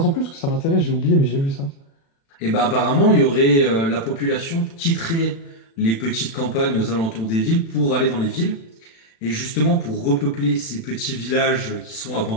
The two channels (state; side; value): late; right; 36 ms